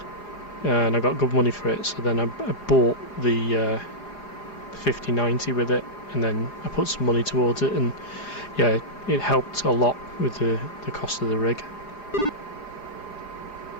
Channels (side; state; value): right; late; 4.9 ms